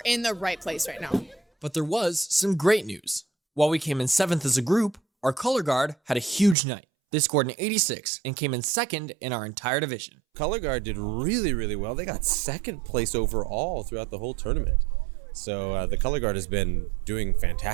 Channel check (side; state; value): left; drops out; at 6.6 s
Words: in the right place right now. But there was some great news. While we came in 7th as a group, our color guard had a huge night. They scored an 86 and came in 2nd in our entire division. Color Guard did really, really well. They got 2nd place overall throughout the whole tournament. So the Color Guard has been doing